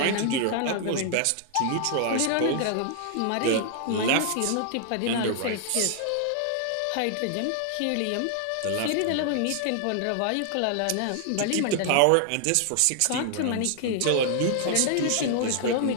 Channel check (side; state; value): both; different; correlation 0.00